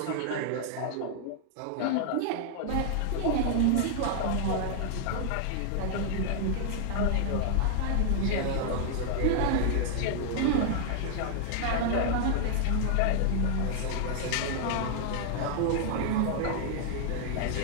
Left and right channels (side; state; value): both; different; correlation 0.00